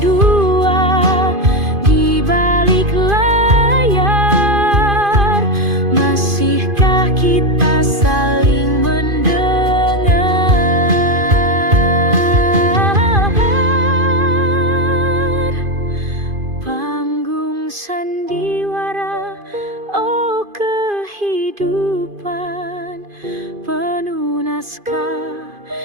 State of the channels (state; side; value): late; left; 2.5 ms